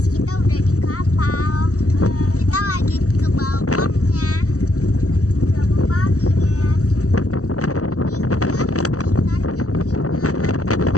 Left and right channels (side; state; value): right; late; 0.66 ms